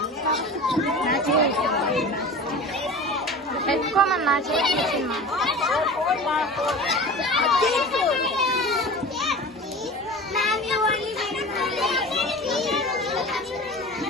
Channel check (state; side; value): normal; both; correlation 0.35